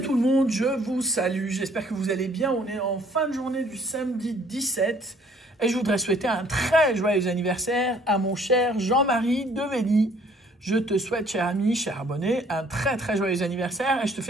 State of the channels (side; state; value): both; normal; correlation 0.60